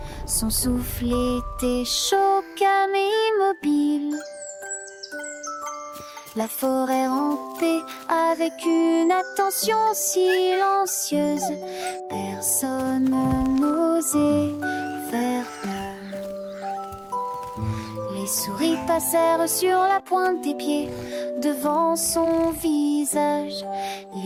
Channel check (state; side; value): identical; both; correlation 1.00